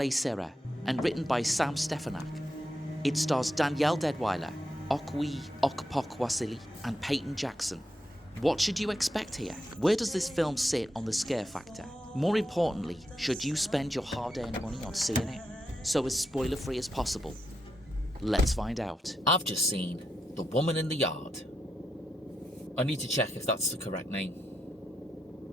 and written by Sam Stefanak, it stars Danielle Deadwyler, Okwe Okpokwasili, and Peyton Jackson. What should you expect here? Where does this film sit on the scare factor? More importantly, should you spend your hard-earned money on seeing it? So as spoiler-free as possible. Let's find out. I've just seen The Woman in the Yard. I need to check if that's the correct name.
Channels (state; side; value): normal; both; correlation 0.84